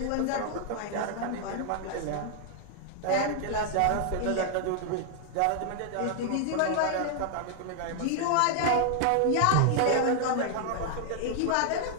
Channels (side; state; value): both; different; correlation 0.00